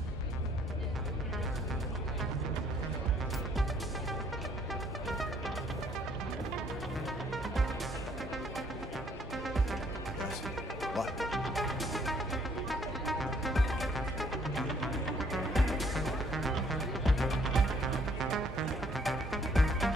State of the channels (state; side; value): normal; both; correlation 0.64